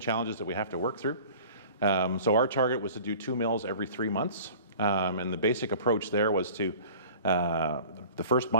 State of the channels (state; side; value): inverted; both; correlation -0.44